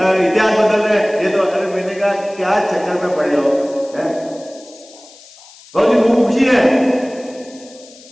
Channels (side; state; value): left; noise; hiss, 23 dB below the sound